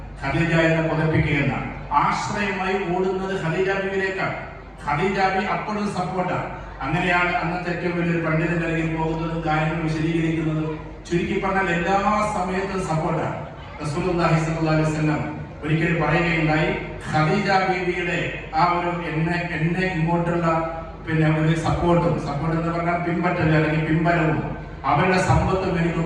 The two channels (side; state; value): both; identical; correlation 1.00